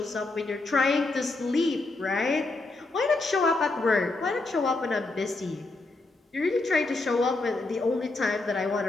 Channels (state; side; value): quieter; right; 3.2 dB